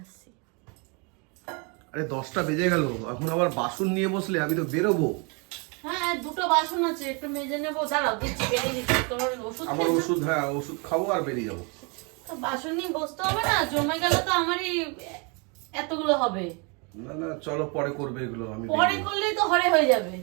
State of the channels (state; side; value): quieter; left; 32.7 dB